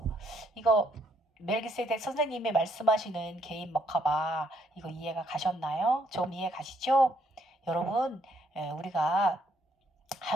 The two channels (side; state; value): both; normal; correlation 0.70